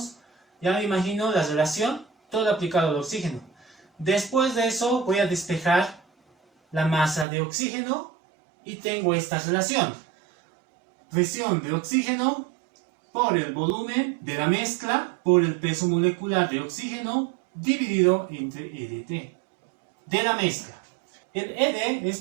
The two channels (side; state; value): left; drops out; at 7.2 s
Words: ya me imagino la relación, todo aplicado al oxígeno. Después de eso voy a despejar la masa de oxígeno y tengo esta relación. Presión de oxígeno por el volumen de la mezcla por el peso molecular de oxígeno dividido entre EDT de la mezcla. El ED es